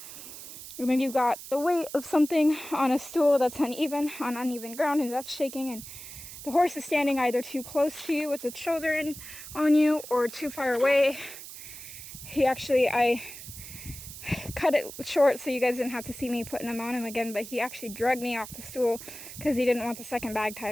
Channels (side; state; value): right; noise; hiss, 13 dB below the sound